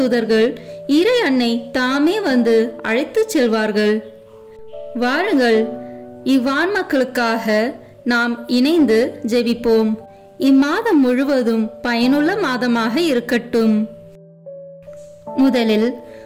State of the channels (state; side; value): identical; both; correlation 1.00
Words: இறை அன்னை தாமே வந்து அழைத்து செல்வார்கள். வாருங்கள், இவ்வான்மாக்களுக்காக நாம் இணைந்து ஜெபிப்போம். இம்மாதம் முழுவதும் பயனுள்ள மாதமாக இருக்கட்டும். முதலில்